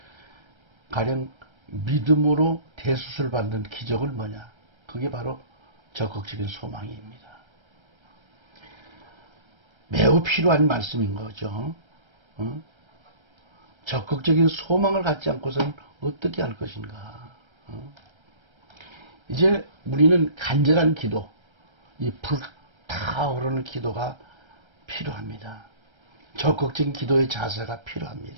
가령 믿음으로 대수술 받는 기적은 뭐냐? 그게 바로 적극적인 소망입니다. 매우 필요한 말씀인 거죠. 적극적인 소망을 갖지 않고서는 어떻게 할 것인가? 이제 우리는 간절한 기도, 이 불타오르는 기도가 필요합니다. 적극적인 기도의 자세가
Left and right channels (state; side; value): late; left; 1.3 ms